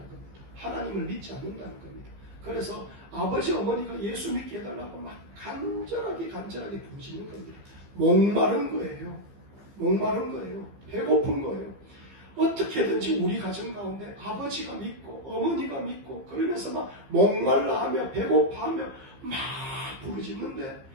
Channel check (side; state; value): left; late; 15 ms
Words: 하나님을 믿지 않는다는 겁니다. 그래서 아버지, 어머니가 예수 믿게 해달라고 막 간절하게 부르시는 겁니다. 목마른 거예요. 배고픈 거예요. 어떻게든지 우리 가정 가운데 아버지가 믿고 어머니가 믿고 그러면서 막 목말라하며 배고파하며 막 부르짖는데